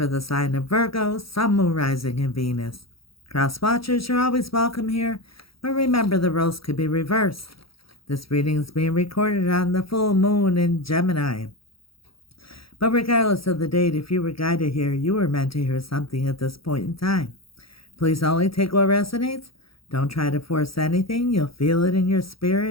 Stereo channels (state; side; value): late; right; 0.75 ms